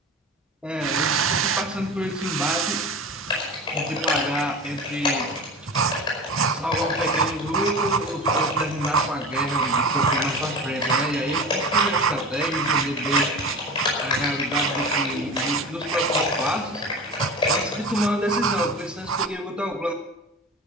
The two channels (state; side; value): normal; both; correlation 0.32